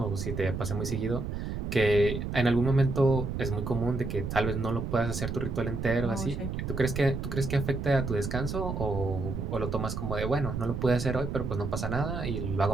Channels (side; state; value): right; noise; rumble, 4 dB below the sound